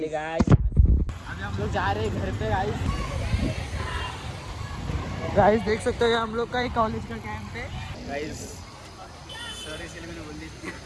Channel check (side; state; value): both; identical; correlation 1.00